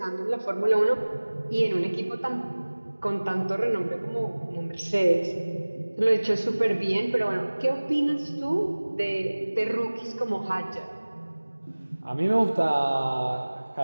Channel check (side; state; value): both; inverted; correlation -1.00